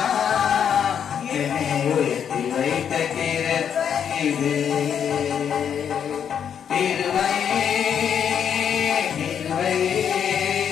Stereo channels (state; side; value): quieter; right; 8.2 dB